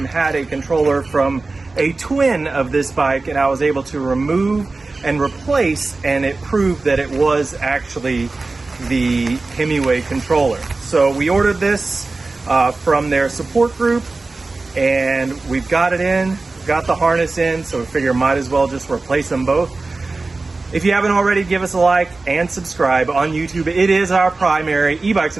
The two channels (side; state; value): left; quieter; 3.6 dB